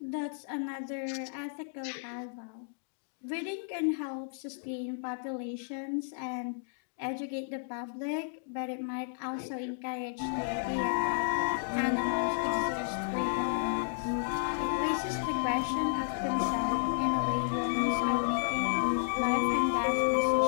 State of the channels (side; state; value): right; silent; digital silence